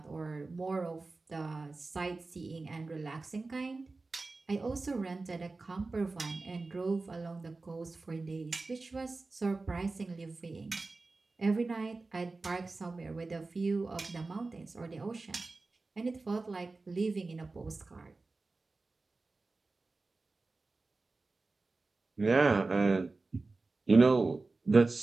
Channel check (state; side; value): quieter; left; 3.6 dB